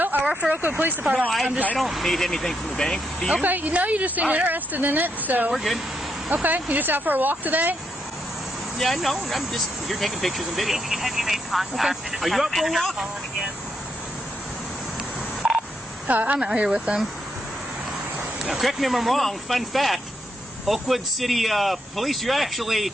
I work for Oakwood Police No, Department. I don't need anything from the bank. Do you? Okay, no, you just seem All right. interested in it, so. We're good. Okay, you just out for a walk today? Yeah, no, I'm just here taking pictures and video. Have you made contact? Okay. Just Are you have up for a been walk? calling again? I'm out here with them. Now, correct me if I'm wrong. Fun fact: Oakwood City Police. You're actually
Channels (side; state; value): both; normal; correlation 0.79